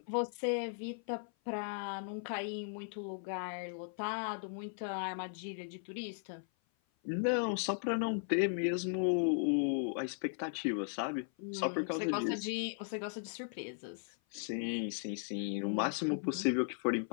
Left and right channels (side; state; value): right; silent; 53 dB below the other